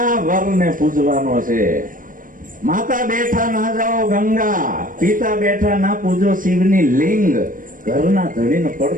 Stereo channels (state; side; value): late; left; 0.40 ms